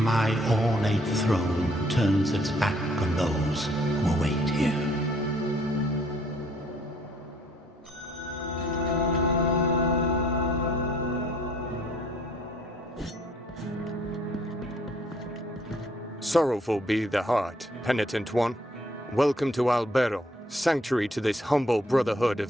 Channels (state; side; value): normal; both; correlation 0.62